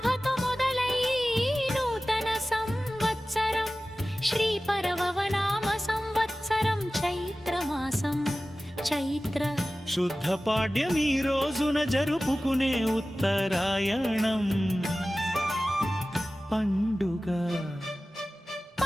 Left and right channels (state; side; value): normal; both; correlation 0.96